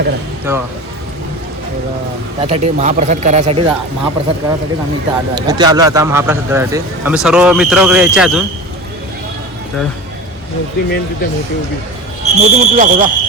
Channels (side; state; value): both; normal; correlation 0.31